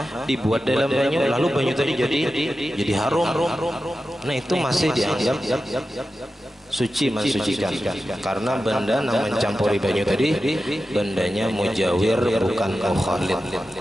dibuat dalam banyu, lalu banyu tadi jadi harum. Nah itu masih dianggap suci mensucikan, karena benda yang mencampuri banyu tadi bendanya mujawir bukan mukhalid.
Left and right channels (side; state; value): both; normal; correlation 0.92